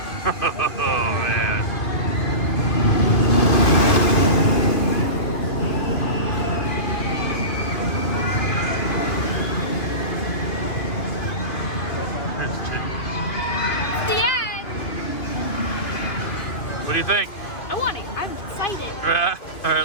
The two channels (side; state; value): right; late; 2.2 ms